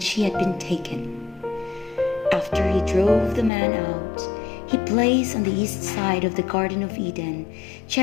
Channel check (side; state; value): right; drops out; at 3.5 s